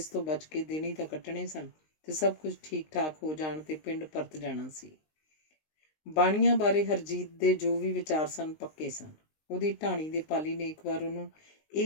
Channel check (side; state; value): right; late; 19 ms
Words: ਤੋਂ ਬਚ ਕੇ ਦਿਨ ਹੀ ਤਾਂ ਕੱਟਣੇ ਸਨ ਤੇ ਸਭ ਕੁਝ ਠੀਕ ਠਾਕ ਹੋ ਜਾਣ ਤੇ ਪਿੰਡ ਪਰਤ ਜਾਣਾ ਸੀ। ਬਾਣੀਆਂ ਬਾਰੇ ਹਰਜੀਤ ਦੇ ਜੋ ਵੀ ਵਿਚਾਰ ਸਨ ਪੱਕੇ ਸਨ। ਉਹਦੀ ਢਾਣੀ ਦੇ ਪਾਲੀ ਨੇ ਇੱਕ ਵਾਰ ਉਹਨੂੰ